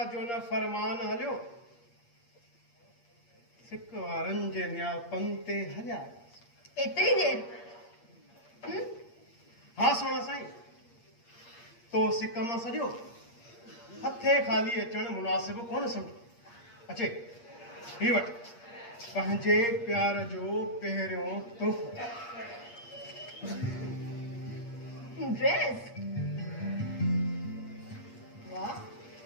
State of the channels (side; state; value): right; late; 8.5 ms